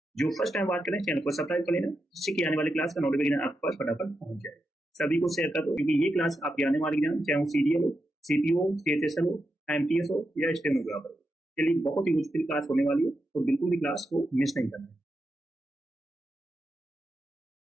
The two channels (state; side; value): normal; both; correlation 0.86